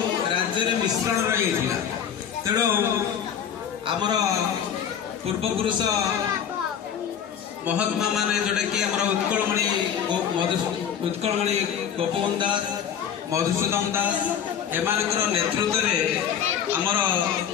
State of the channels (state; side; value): quieter; right; 8.5 dB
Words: राज्य मिश्रण रही तेणु आमर पूर्वपुरुष महात्मा माने जोटा कि उत्कलमणि गोपबंधु दास मधुसूदन दास एमानकर नेतृत्व में आमर